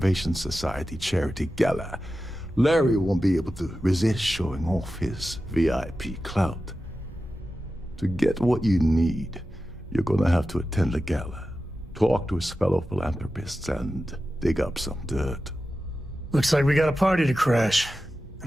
Society charity gala. Larry won't be able to resist showing off his VIP clout. To get what you need, you're gonna have to attend the gala, talk to his fellow philanthropists, and dig up some dirt. Looks like we got a party to crash.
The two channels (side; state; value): both; normal; correlation 0.93